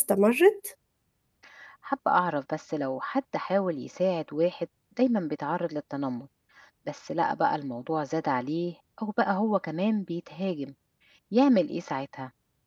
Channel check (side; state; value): both; identical; correlation 1.00